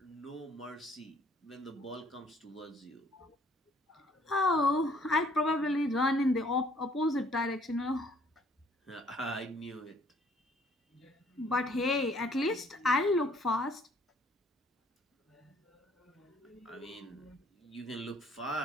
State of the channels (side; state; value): both; normal; correlation 0.61